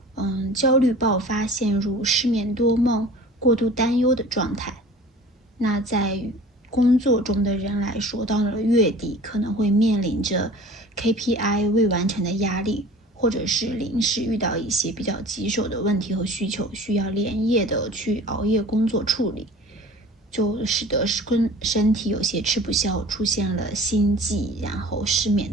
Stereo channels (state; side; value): normal; both; correlation 0.43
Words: 焦虑爆发，陷入失眠多梦、过度担忧的状态。那在工作中的人来说，到了月底可能会面临着 KPI 未完成的压力，或者是临时遇到一些比较棘手的问题和需求，需要连夜的去熬夜工作处理，就使得身体有些吃不消，出现了心悸然后失眠